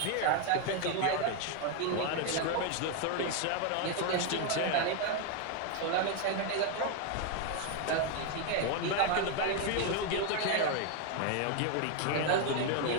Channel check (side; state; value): both; different; correlation 0.01